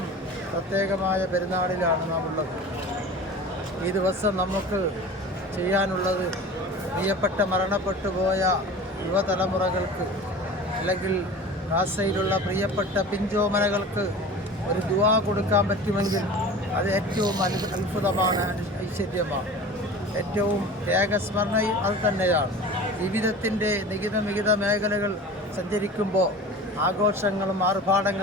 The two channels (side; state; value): both; normal; correlation 0.37